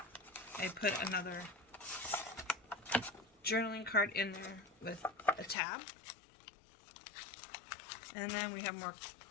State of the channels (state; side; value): drops out; right; at 5.6 s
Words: I put another journaling card in there with a tab. And then we have more.